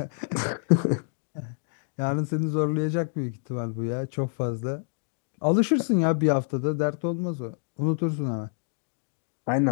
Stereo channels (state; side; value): silent; right; 60 dB below the other